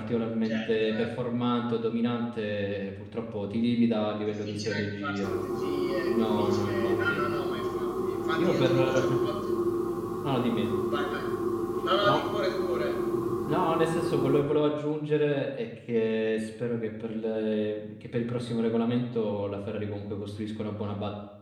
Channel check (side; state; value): both; identical; correlation 1.00